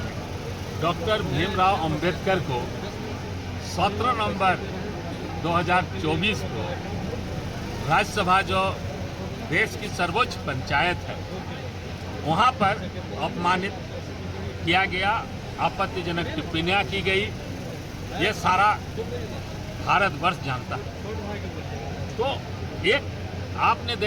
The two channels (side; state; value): both; identical; correlation 1.00